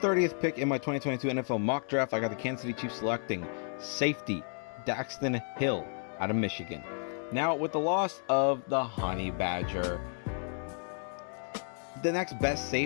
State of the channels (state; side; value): silent; right; 56 dB below the other